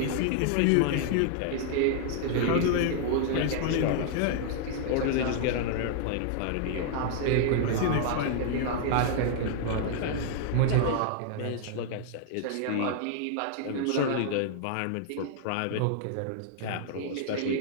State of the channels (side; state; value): both; different; correlation 0.00